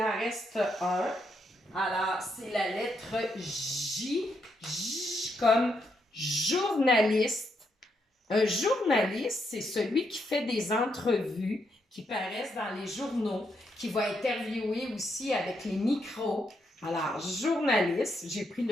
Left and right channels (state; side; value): normal; both; correlation 0.79